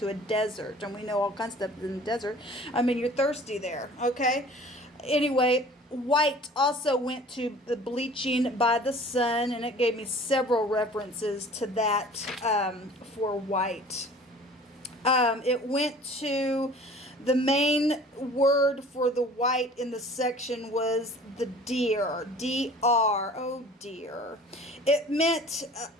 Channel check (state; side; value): normal; both; correlation 0.47